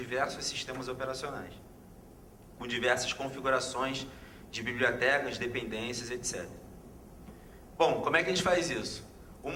sistemas operacionais, com diversas configurações de bibliotecas, dependências, etc. Bom, como é que a gente faz isso?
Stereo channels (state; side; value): identical; both; correlation 1.00